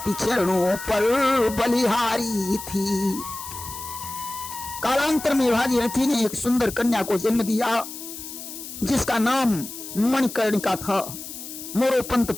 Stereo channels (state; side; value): noise; left; hiss, 11 dB below the sound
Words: चरणों पर बलिहारी थी। कालांतर में भागीरथी ने एक सुंदर कन्या को जन्म दिया जिसका नाम मणिकर्णिका था। मोरोपंत